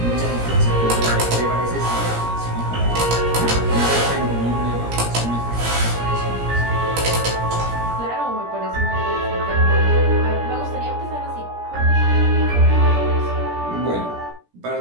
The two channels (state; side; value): late; left; 17 ms